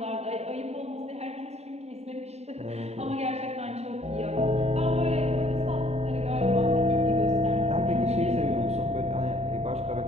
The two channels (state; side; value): late; left; 0.31 ms